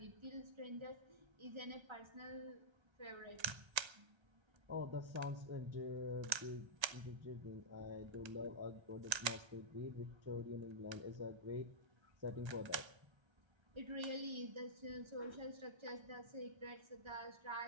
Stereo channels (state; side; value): late; left; 1.3 ms